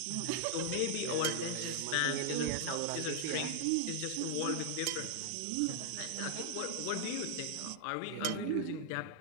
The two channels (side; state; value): both; different; correlation -0.01